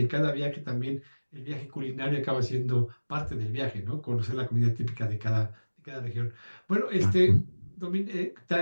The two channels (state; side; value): inverted; both; correlation -1.00